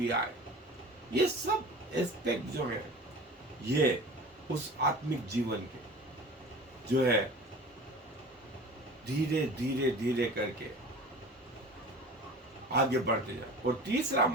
आए। ये सब एस्पेक्ट जो है ये उस आत्मिक जीवन के जो है धीरे करके आगे बढ़ते जाए। और तीसरा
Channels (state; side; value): normal; both; correlation 0.39